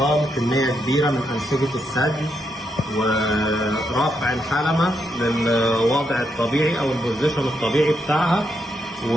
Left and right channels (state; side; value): normal; both; correlation 0.80